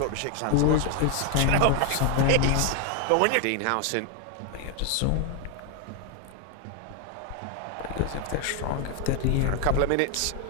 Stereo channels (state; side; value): different; both; correlation 0.01